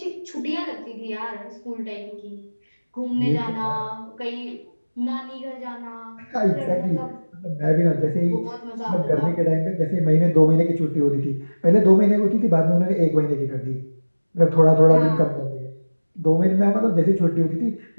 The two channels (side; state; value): both; inverted; correlation -1.00